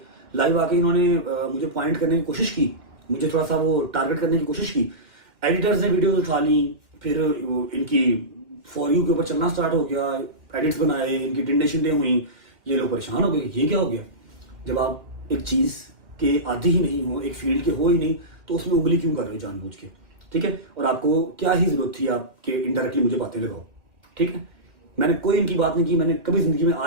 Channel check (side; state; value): left; late; 2.1 ms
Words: लाइव आके इन्होंने मुझे पॉइंट करने की कोशिश की, मुझे थोड़ा सा वो टारगेट करने की कोशिश की। एडिटर्स ने वीडियोस उठा ली, फिर इनकी फॉर यू के ऊपर चलना स्टार्ट हो गया, एडिट्स बनाए, इनकी टिंडे शिंडे हुई, ये लोग परेशान हो गए, ये क्या हो गया। जब आप एक चीज के आदी ही नहीं हो, एक फील्ड के हो ही नहीं, तो उसमें उंगली क्यों कर रहे हो जानबूझ के, ठीक है। और आपको क्या ही जरूरत थी आपके इनडायरेक्टली मुझे बातें लगाओ, ठीक है। मैंने कोई इनकी बात नहीं की, मैंने कभी जिंदगी में